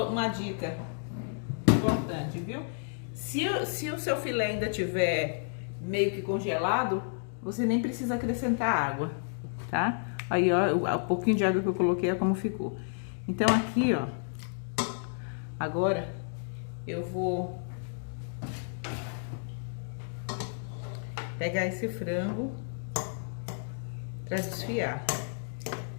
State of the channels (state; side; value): silent; right; digital silence